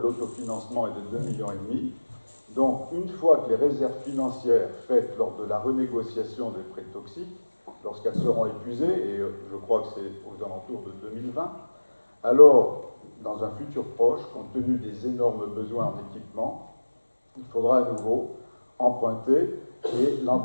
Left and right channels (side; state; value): both; inverted; correlation -1.00